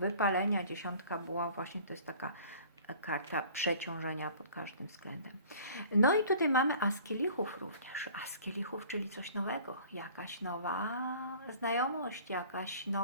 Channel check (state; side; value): inverted; both; correlation -0.48